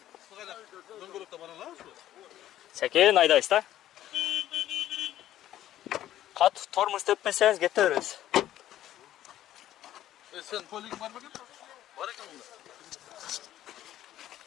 Дөңгөлөктө бара алабыз бу? Сәкен айдайсыз да? Қатты тормоз теппесеңіз кете бересіз. Sen poligin var mı? Var ekan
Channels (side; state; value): right; quieter; 12.8 dB